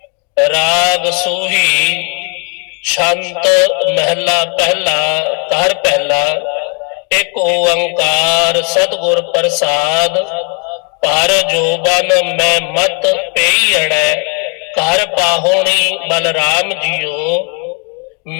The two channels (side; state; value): right; quieter; 36.6 dB